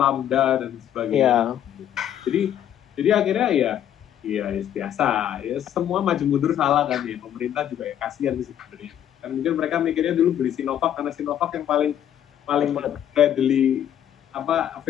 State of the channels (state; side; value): quieter; right; 10.5 dB